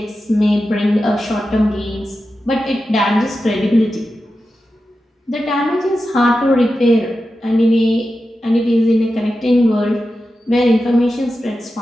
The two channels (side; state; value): both; normal; correlation 0.91